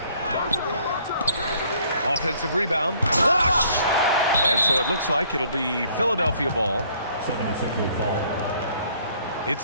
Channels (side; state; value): both; inverted; correlation -0.61